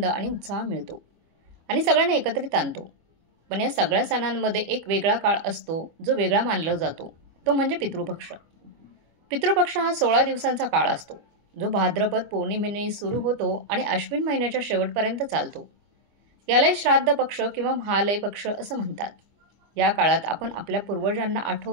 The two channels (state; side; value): late; left; 25 ms